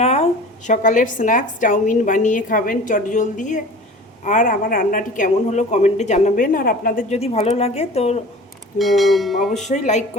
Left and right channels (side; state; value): both; normal; correlation 0.41